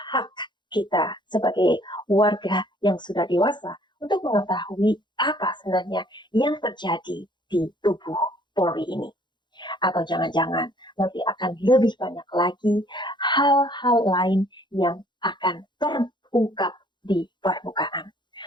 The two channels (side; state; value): right; late; 0.22 ms